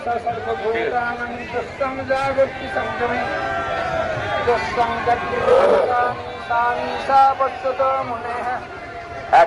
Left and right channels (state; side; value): identical; both; correlation 1.00